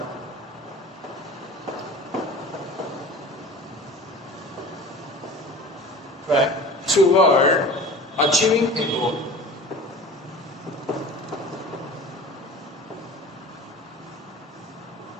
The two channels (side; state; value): both; normal; correlation 0.40